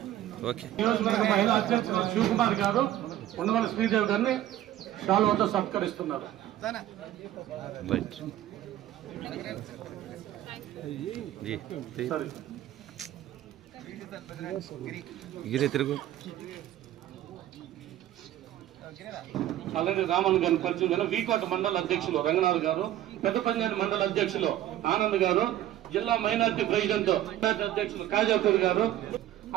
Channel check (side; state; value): left; quieter; 13.1 dB